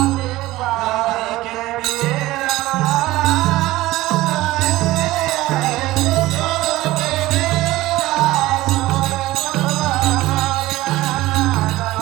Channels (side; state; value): left; quieter; 17.5 dB